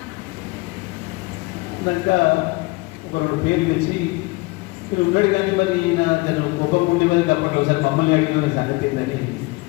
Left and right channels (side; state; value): right; quieter; 24.2 dB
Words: దాకా ఒక 2 పేర్లు తెచ్చి మీరు ఉన్నాడు కానీ మరి ఈయన జనం కోపం ఉండి మరి అప్పట్లో ఒకసారి మమ్మల్ని అడిగిన సంగతి ఏందని